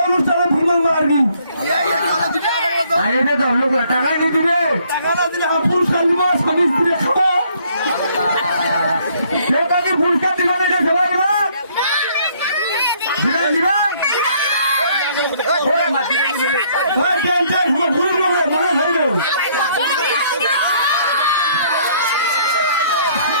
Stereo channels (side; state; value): both; inverted; correlation -0.64